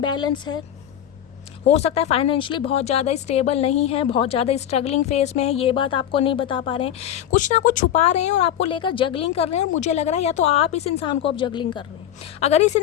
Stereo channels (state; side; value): quieter; right; 10.7 dB